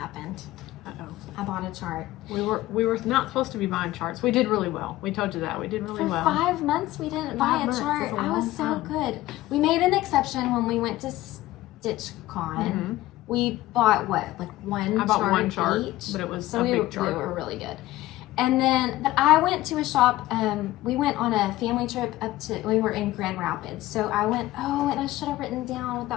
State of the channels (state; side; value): quieter; right; 16.5 dB